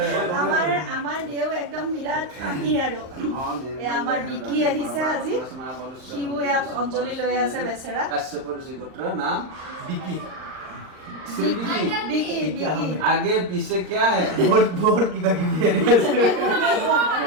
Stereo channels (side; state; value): left; late; 39 ms